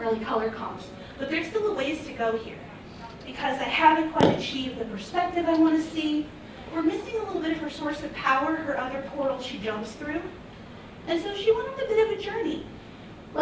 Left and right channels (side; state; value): both; identical; correlation 1.00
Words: early color comps. But there's still a ways to go here, because I haven't quite achieved the perspective I want to see. We're missing a little bit of her source of power, her other portal she jumps through. And so she went on a bit of a journey.